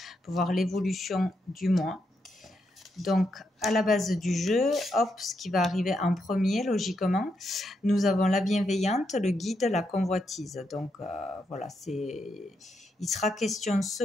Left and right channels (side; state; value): both; normal; correlation 0.81